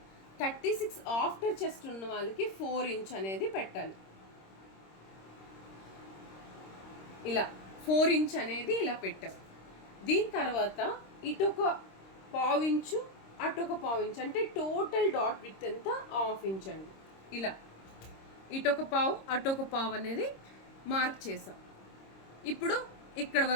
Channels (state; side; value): late; right; 26 ms